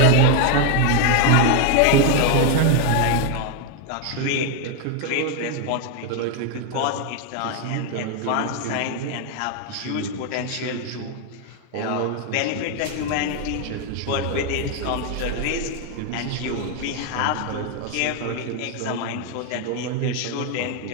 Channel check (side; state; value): both; different; correlation 0.01